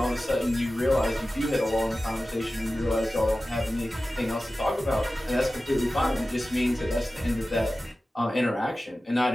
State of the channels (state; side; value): normal; both; correlation 0.95